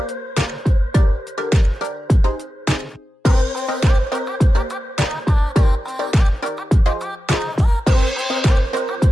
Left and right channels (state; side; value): normal; both; correlation 0.93